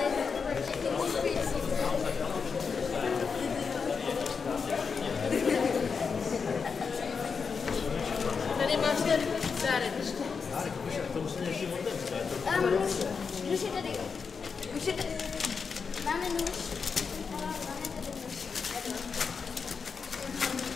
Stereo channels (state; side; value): quieter; right; 5.5 dB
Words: Tady máš ten dárek. Nůž je tady. Máme nůž. Máme tady nůž.